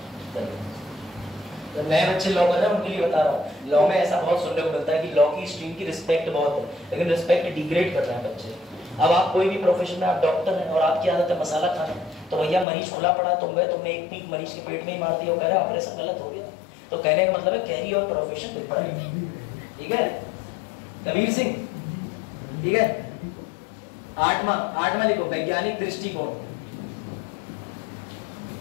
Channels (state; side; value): drops out; right; at 12.7 s